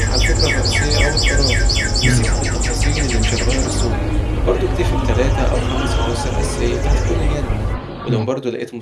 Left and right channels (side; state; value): both; identical; correlation 1.00